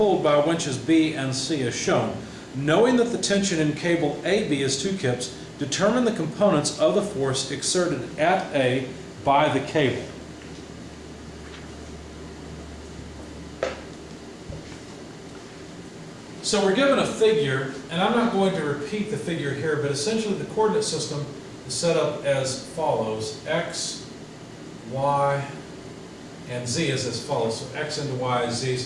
by winches B and C as shown. Knowing that the tension in cable AB is 2 kips, determine the components of the force exerted at A by the cable. So we're given a figure, and I'm not going to repeat the figure here, but essentially the coordinate system is set up as follows. X, Y, and Z is as follows. So X into Y is Z,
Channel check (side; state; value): both; identical; correlation 1.00